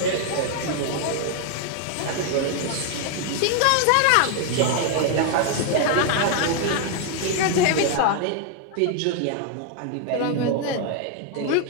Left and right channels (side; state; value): both; different; correlation 0.00